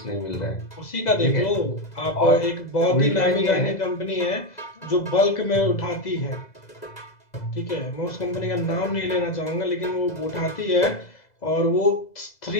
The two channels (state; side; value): late; right; 2.0 ms